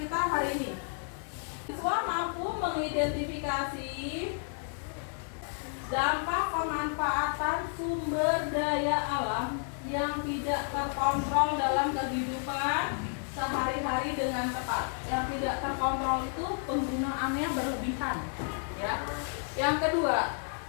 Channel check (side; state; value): right; silent; 55 dB below the other